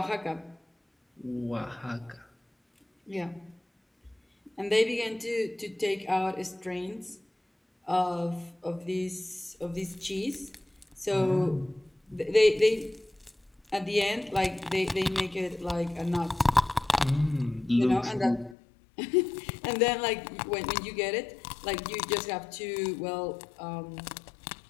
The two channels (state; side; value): drops out; right; at 18.6 s